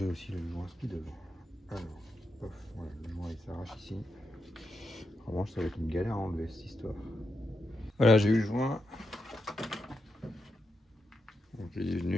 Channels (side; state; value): both; normal; correlation 0.85